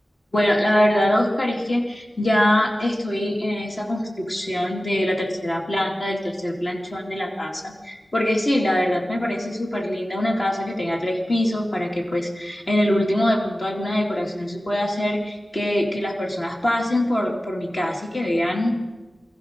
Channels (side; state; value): both; normal; correlation 0.95